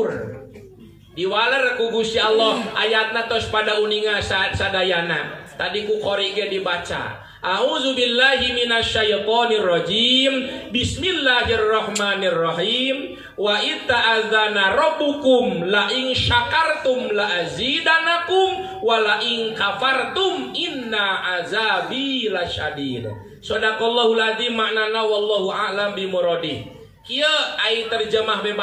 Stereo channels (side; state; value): both; identical; correlation 1.00